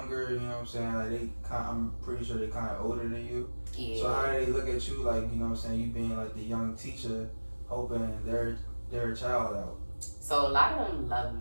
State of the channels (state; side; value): inverted; both; correlation -1.00